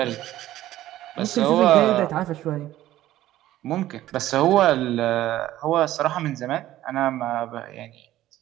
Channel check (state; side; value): quieter; left; 14.3 dB